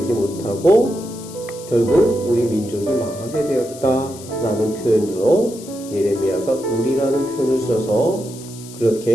못하고 결국 우리 민족이 망하게 되었다라는 표현으로 예레미야가 우리라는 표현을 써서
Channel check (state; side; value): noise; left; hiss, 17 dB below the sound